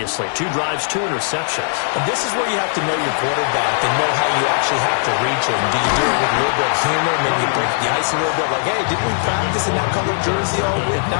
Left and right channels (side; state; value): right; silent; digital silence